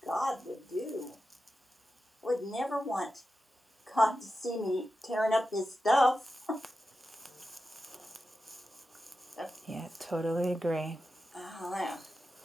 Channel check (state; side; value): normal; both; correlation 0.91